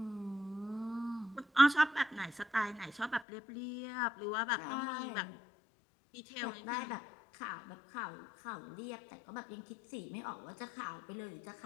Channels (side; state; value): right; drops out; at 3.2 s